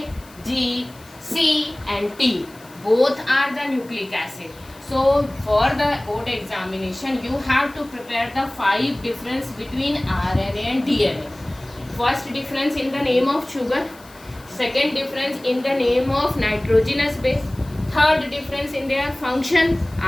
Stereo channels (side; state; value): left; noise; hiss, 24 dB below the sound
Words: G, C and T. Both are the nucleic acid. So for the board examination, you have to prepare the 5 difference between RNA and DNA. First difference in the name of sugar. Second difference in the name of nitrogenous base. Third difference in their function.